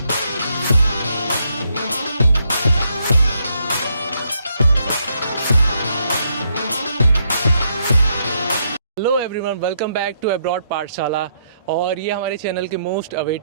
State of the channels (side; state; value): both; inverted; correlation -0.75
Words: Hello everyone, welcome back to abroad Pathshala. और ये हमारे चैनल की मोस्ट